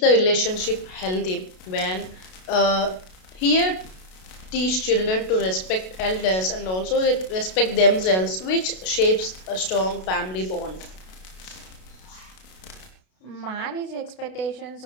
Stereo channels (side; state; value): right; late; 32 ms